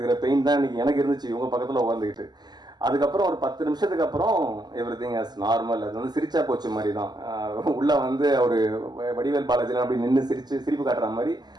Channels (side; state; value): left; late; 0.20 ms